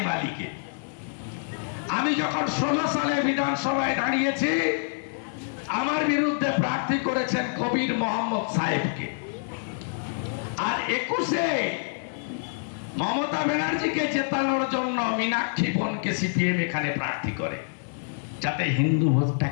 আলীকে। আমি যখন 16 সালে বিধানসভায় দাঁড়িয়েছি, আমার বিরুদ্ধে প্রার্থী করেছেন কবির মোহাম্মদ সাহেবকে। আর 21-এ মমতা ব্যানার্জিকে জেতানোর জন্য মীনাক্ষী বোনকে সিপিএম এখানে প্রার্থী করে, যাতে হিন্দু ভোটটা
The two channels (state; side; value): silent; right; digital silence